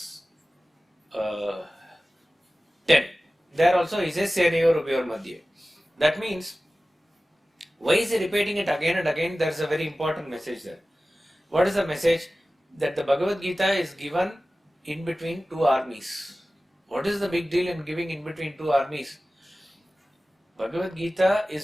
10. There also he says Senayor Ubhayor Madhye. That means, why is he repeating it again and again? There is a very important message there. What is the message? That the Bhagavad Gita is given in between two armies. What is the big deal in giving in between two armies? Bhagavad Gita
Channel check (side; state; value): both; normal; correlation 0.96